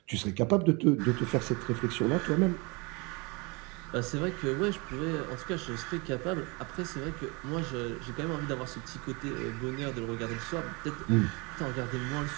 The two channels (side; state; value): left; quieter; 28.3 dB